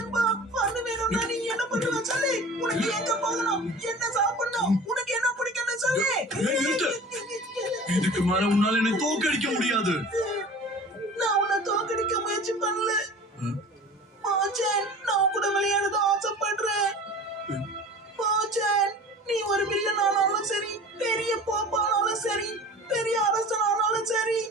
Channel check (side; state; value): both; normal; correlation 0.40